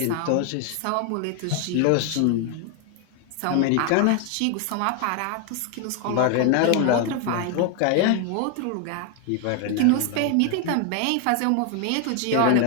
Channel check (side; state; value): both; different; correlation 0.01